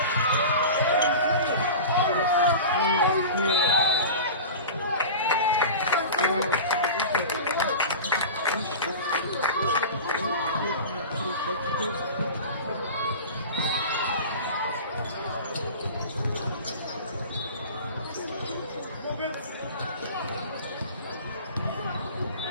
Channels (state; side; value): inverted; both; correlation -0.33